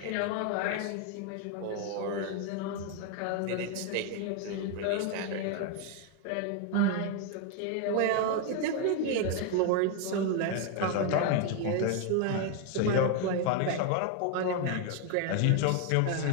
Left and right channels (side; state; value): both; different; correlation 0.01